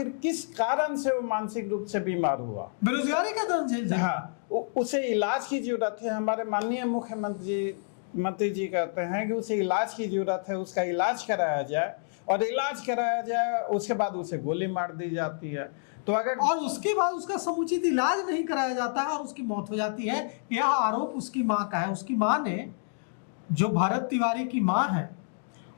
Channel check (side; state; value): right; silent; digital silence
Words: किस कारण से वो मानसिक रूप से बीमार हुआ, बेरोजगारी का दर्द झेल रहा है। हाँ, उसे इलाज की जरूरत है। हमारे माननीय मुख्यमंत्री जी कहते हैं कि उसे इलाज की जरूरत है, उसका इलाज कराया जाए, और इलाज कराया जाए उसके बाद उसे गोली मार दी जाती है। तो अगर और उसके बाद उसका समुचित इलाज नहीं कराया जाता है और उसकी मौत हो जाती है, यह आरोप उसकी मां का है। उसकी मां ने, जो भरत तिवारी की मां है,